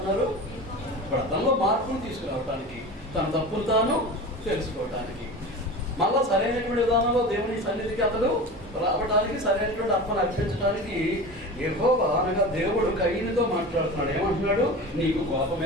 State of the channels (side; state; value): both; normal; correlation 0.32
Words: ఇప్పుడు అతనిలో మార్పును తీసుకురావటానికి, తన తప్పులు తాను తెలుసుకోవటానికి, మళ్ళా సరైనటువంటి విధానంలో దేవుని సన్నిధికి అతడు రావడానికి, సరైనటువంటి అర్పణ అర్పించడానికి యెహోవా అనగా దేవుడు కయ్యనుతో మాట్లాడుతున్నాడు. ఏమంటున్నాడు? నీకు